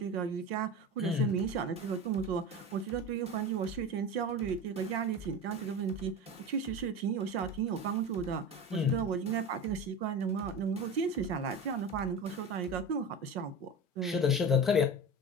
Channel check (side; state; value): both; normal; correlation 0.28